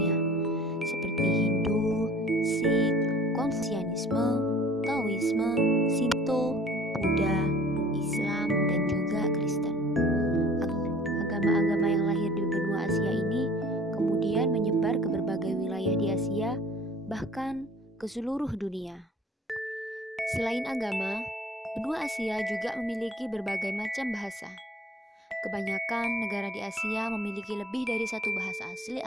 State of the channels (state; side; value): normal; both; correlation 0.49